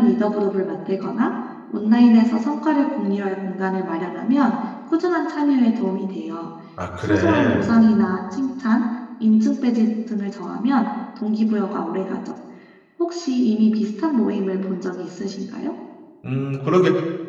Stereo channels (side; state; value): both; identical; correlation 1.00